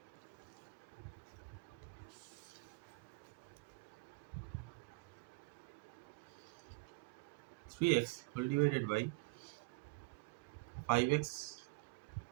3x whole divided by 5x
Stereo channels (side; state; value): left; quieter; 26.0 dB